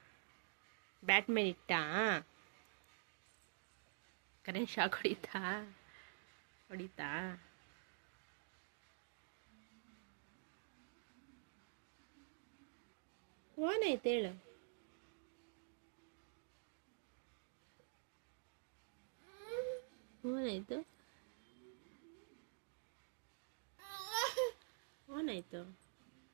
ಬ್ಯಾಟ್ ಮೇಲೆ ಇಟ್ಟ. ಕರೆಂಟ್ ಶಾಕ್ ಹೊಡಿತಾ? ಹೊಡಿತಾ? ಓನಾಯ್ತು ಹೇಳು. ಓನಾಯ್ತು ಓನಾಯ್ತು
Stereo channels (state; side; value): silent; left; digital silence